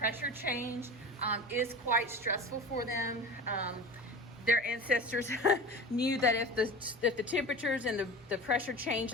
change is quite stressful for them. Their ancestors knew that if the temperatures and the pressure changed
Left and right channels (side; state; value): both; normal; correlation 0.33